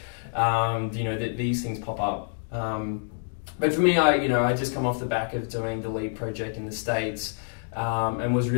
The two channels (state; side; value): silent; right; digital silence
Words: that these things pop up. But for me, I just come off the back of doing the LEAP project in the States, and was